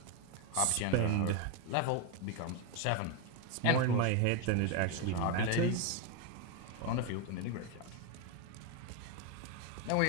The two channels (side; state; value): both; different; correlation 0.02